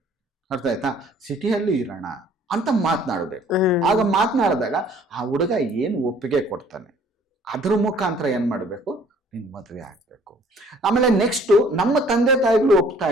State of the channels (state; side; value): normal; both; correlation 0.56